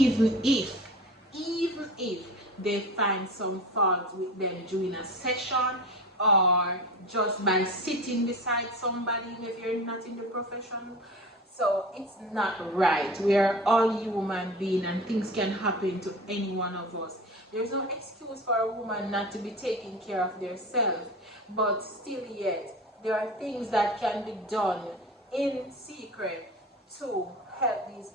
if they find some fault with them during a session, or just by sitting beside somebody if you're not in the profession. So it's not right. We are all human beings and things can happen to any one of us. There's no excuse for a woman not to be taking care of themselves, but still yet there are things that can be done in secret to help these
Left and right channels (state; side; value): normal; both; correlation 0.33